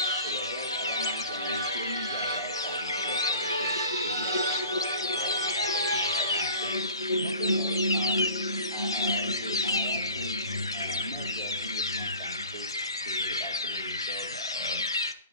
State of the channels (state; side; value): inverted; both; correlation -0.43